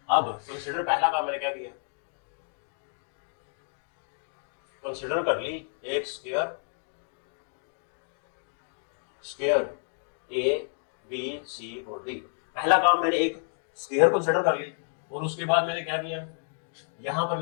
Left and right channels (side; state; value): right; silent; digital silence